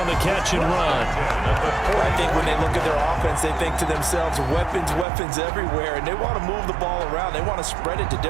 the catch and run. I think when they look at their offense, they think to themselves, weapons everywhere, and they want to move the ball around. They want to spread it to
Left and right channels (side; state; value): left; drops out; at 5.1 s